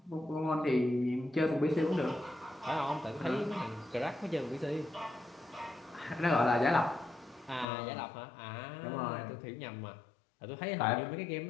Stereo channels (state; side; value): drops out; right; at 7.7 s